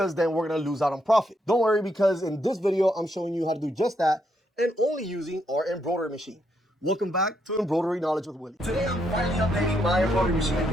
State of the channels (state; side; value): normal; both; correlation 0.77